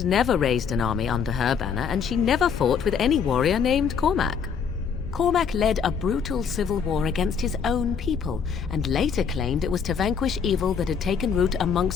never raised an army under her banner, and she never fought with any warrior named Cormac. Cormac led a brutal civil war against his own people, and later claimed it was to vanquish evil that had taken root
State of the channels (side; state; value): right; quieter; 6.7 dB